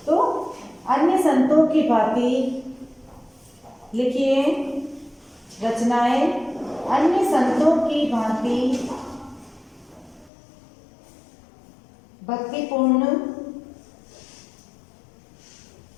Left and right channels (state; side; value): drops out; right; at 10.3 s